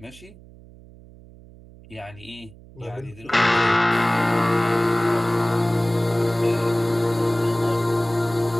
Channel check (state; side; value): noise; right; hum, 22 dB below the sound